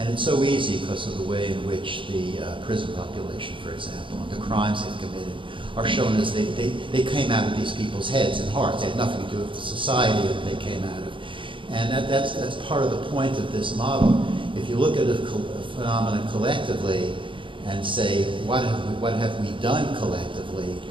it's so easy because of the way in which the prison population, for example, and the crimes they've committed are shown as they came out of these people's heads and hearts. They had nothing to do with the society that they came out of. And that's part of the point of this model. If you look at a phenomenon collectively and say, what have we done collectively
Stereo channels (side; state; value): left; late; 0.25 ms